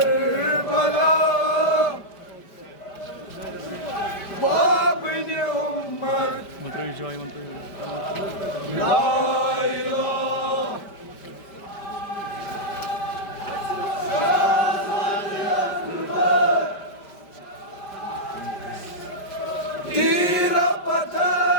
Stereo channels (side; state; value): right; late; 5.1 ms